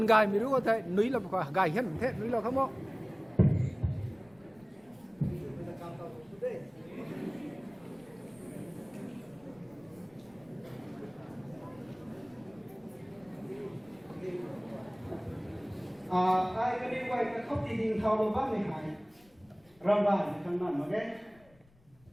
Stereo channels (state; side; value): noise; left; rumble, 29 dB below the sound